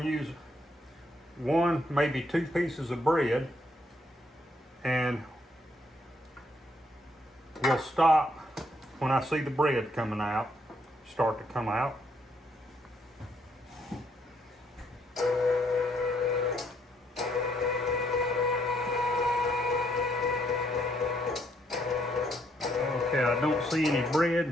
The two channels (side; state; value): both; normal; correlation 0.72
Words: to use 1, maybe 2 pieces of bread, and we'll stop when I see the bread coming out, start to come out. I don't see any